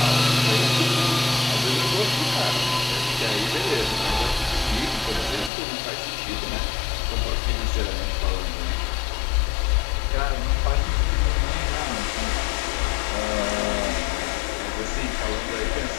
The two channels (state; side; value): drops out; right; at 5.5 s